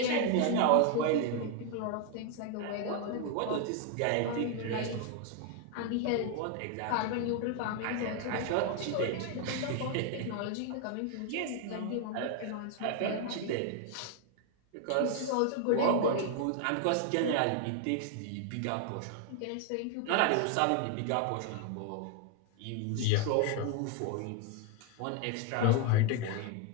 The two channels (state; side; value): different; both; correlation 0.01